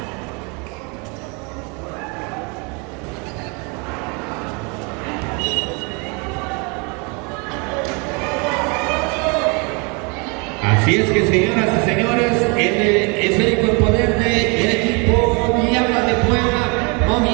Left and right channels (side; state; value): left; quieter; 31.7 dB